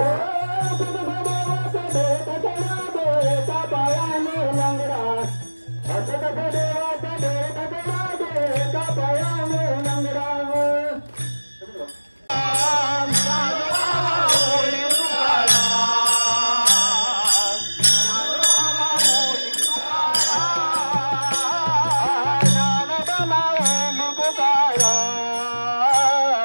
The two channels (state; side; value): inverted; both; correlation -1.00